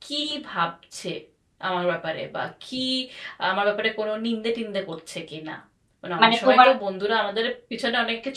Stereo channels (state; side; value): identical; both; correlation 1.00